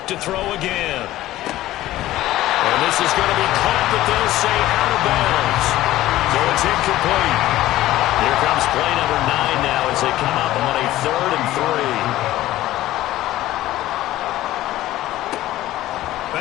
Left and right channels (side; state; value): right; quieter; 15.3 dB